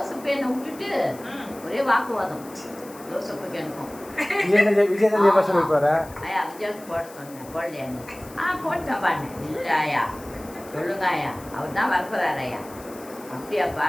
என்ன விட்டுட்டு ஒரே வாக்குவாதம். ஜோசப்புக்கு எனக்கும் விஜய் தான் ஜெயபாஷா இருப்பாரு. ஐயா விஜய்க்கு போட சொன்னேன், போடலையான்னு. போட்டேன் பாருங்க. இல்லை ஐயா சொல்லுங்க ஐயா, அவர் தான் வரப்போறாரு ஐயா. அப்படியாப்பா,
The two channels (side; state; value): left; noise; hiss, 20 dB below the sound